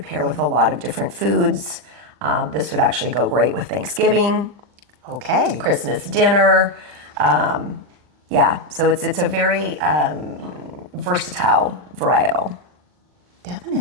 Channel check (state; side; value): late; left; 40 ms